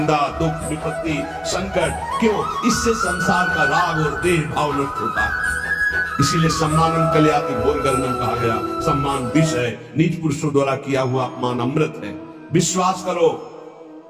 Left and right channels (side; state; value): both; identical; correlation 1.00